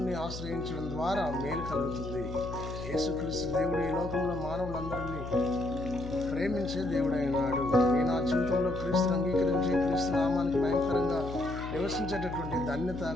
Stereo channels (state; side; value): noise; left; hum, 9 dB below the sound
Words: ఆశ్రయించడం ద్వారా మేలు కలుగుతుంది. యేసుక్రీస్తు దేవుడు ఈ లోకంలో మానవులందరినీ ప్రేమించే దేవుడైనాడు. నేను నా జీవితంలో క్రీస్తుని అంగీకరించి క్రీస్తు నామానికి భయంకరంగా నివసించేటటువంటి ధన్యత,